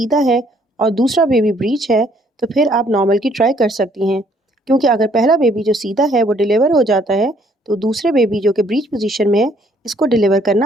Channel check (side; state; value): both; normal; correlation 0.64